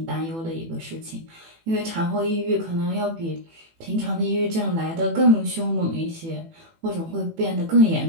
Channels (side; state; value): left; late; 18 ms